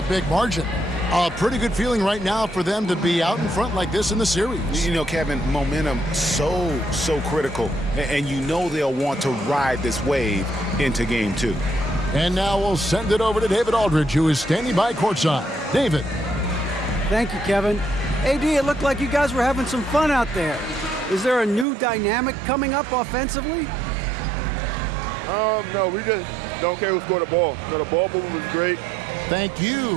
big margin. A pretty good feeling right now for them to be out in front like this in the series. You know, Kevin, momentum so critical, and you know they'll want to ride this wave into game 2. And now we'll send it over to David Aldridge, who is standing by courtside. David. Thank you, Kevin. AD, it looked like you guys were having some fun out there. Is there a new dynamic coming up offensively? No, we just don't care who scored the ball. No, the ball movement was great. Thank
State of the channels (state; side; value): drops out; left; at 21.7 s